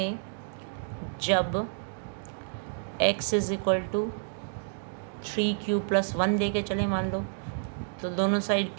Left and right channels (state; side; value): silent; left; digital silence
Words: जब x = 3q + 1 लेके चले मान लो, तो दोनों साइड